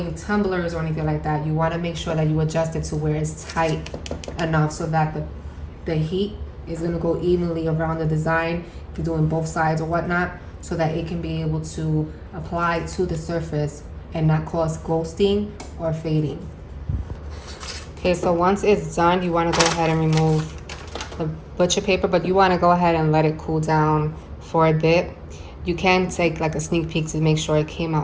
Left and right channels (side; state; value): both; identical; correlation 1.00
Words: tumblers or anything like that, you wanna make sure that you adjust it to where it's tight enough so that the heat is gonna go evenly around the design, if you're doing both sides or whatnot, so that it can be able to apply to the surface and not cause ghosting or fading. Okay, so once it's done, you wanna go ahead and remove the butcher paper, but you wanna go ahead and let it cool down for a bit. You can take like a sneak peek to make sure it came